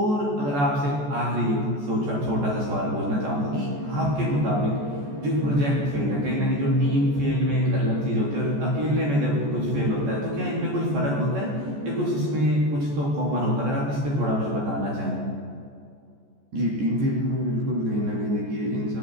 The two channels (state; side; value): late; left; 14 ms